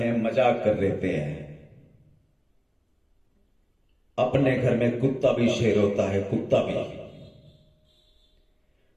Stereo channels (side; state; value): both; identical; correlation 1.00